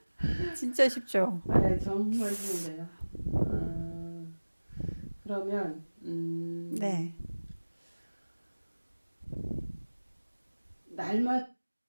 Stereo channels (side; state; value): both; inverted; correlation -1.00